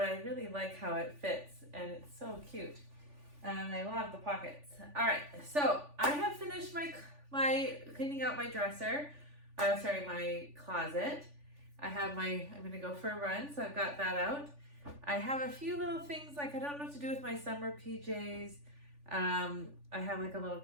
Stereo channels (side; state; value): left; late; 3.4 ms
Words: I really like how it fits, and it's so cute. And I love the pockets. All right, so I have finished my cleaning out my dresser. Sorry, my closet. I'm gonna go for a run, so I've got that out. I have a few little things like I don't know what to do with my summer PJs. I have like a little